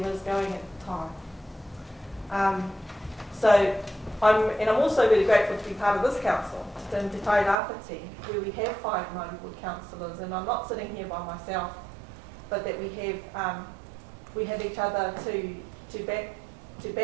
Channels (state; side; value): drops out; left; at 7.6 s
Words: is going at the time. I'm also really grateful to be part of this council, Te Tai Rāwhiti, where we have 5 Māori Ward councillors, and I'm not sitting here by myself, but that we have each other to back,